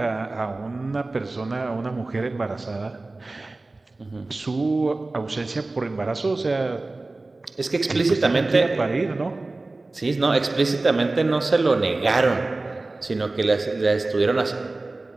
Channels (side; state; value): left; quieter; 3.2 dB